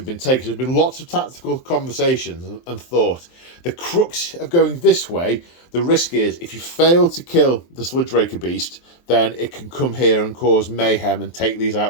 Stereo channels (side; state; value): right; late; 23 ms